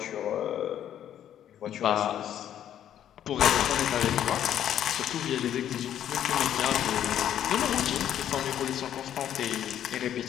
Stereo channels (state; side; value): quieter; right; 10.6 dB